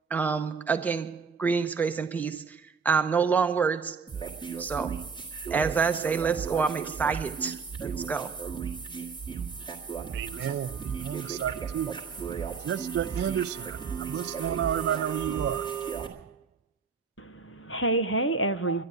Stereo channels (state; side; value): quieter; left; 5.5 dB